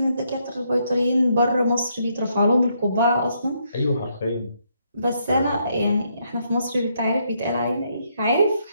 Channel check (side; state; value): both; inverted; correlation -0.75